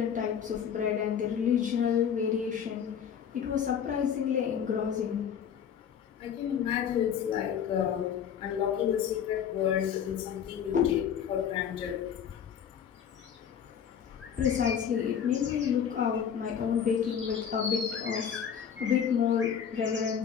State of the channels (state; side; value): quieter; right; 8.1 dB